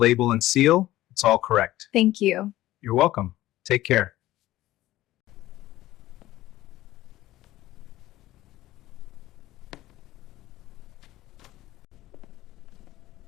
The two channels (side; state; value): right; quieter; 15.6 dB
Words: and seal. It's all correct. Thank you. You're welcome. Take care.